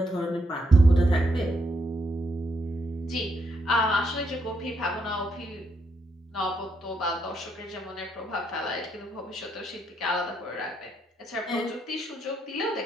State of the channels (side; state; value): both; normal; correlation 0.77